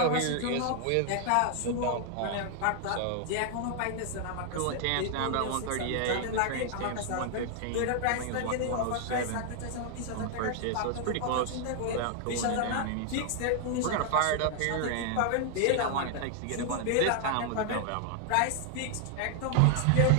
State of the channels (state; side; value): different; both; correlation 0.00